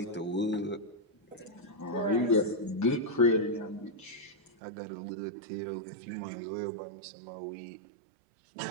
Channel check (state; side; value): drops out; left; at 4.5 s